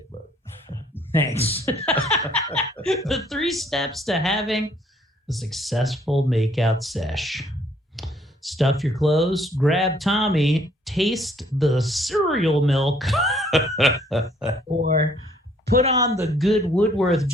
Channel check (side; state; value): both; normal; correlation 0.63